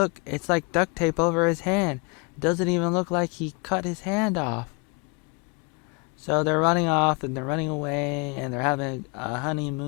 it's like duct tape over his hand. It doesn't even look like he cut his hand off. So they're running off and they're running away and they're having a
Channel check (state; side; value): quieter; right; 30.2 dB